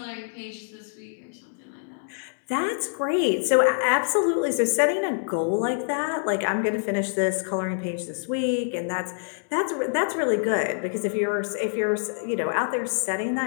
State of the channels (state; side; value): silent; right; 61 dB below the other